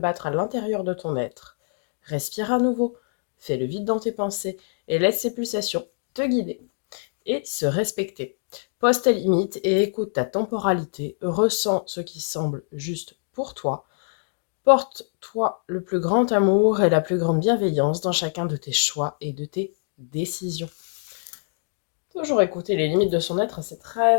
à l'intérieur de ton être. Respire à nouveau. Fais le vide dans tes pensées et laisse ces pulsations te guider et se respecter. Pose tes limites et écoute ta temporalité. Ressens ce qui semble juste pour toi. Porte-toi le plus grand amour et la plus grande bienveillance dans chacun de tes choix et de tes décisions. Toujours écouter les limites de son être, c'est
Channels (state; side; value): silent; right; digital silence